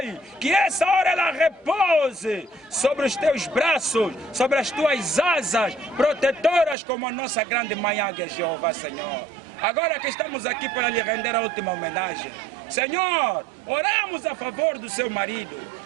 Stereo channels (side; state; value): left; drops out; at 6.8 s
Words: que essa hora ela repouse sobre os teus braços, sobre as tuas asas protetoras, como a nossa grande mãe Águia Jeová, Senhor. Agora que estamos aqui para lhe render a última homenagem, Senhor, oramos a favor do seu marido,